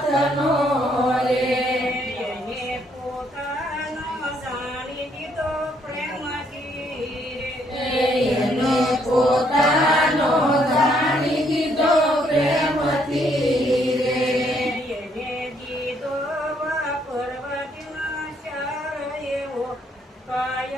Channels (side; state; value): both; normal; correlation 0.69